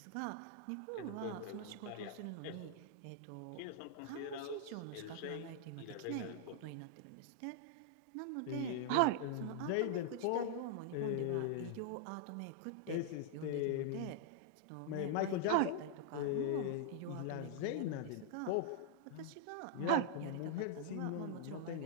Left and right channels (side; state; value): both; different; correlation -0.01